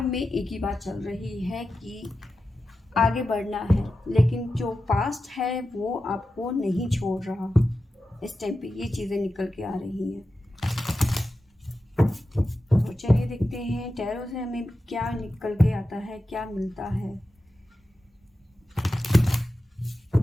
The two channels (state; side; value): normal; both; correlation 0.92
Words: में एक ही बात चल रही है कि आगे बढ़ना है, लेकिन जो पास्ट है वो आपको नहीं छोड़ रहा। इस टाइम पे ये चीज़ें निकल के आ रही हैं। तो चलिए देखते हैं टैरो से हमें क्या निकल के आता है, क्या मिलता है।